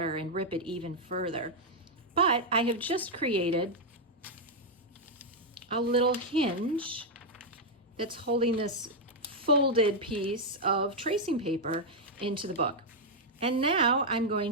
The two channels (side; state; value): both; normal; correlation -0.02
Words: and rip it even further. But I have just created a little hinge that's holding this folded piece of tracing paper into the book. And now I'm